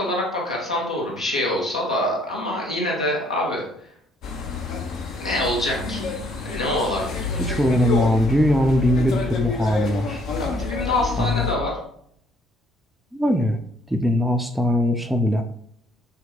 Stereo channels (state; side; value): normal; both; correlation 0.64